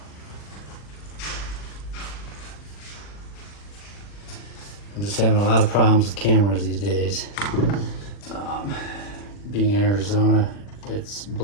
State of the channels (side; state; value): right; late; 40 ms